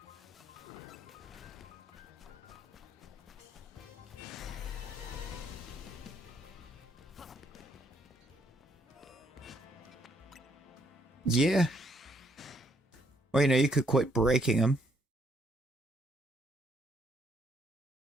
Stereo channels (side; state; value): both; normal; correlation 0.70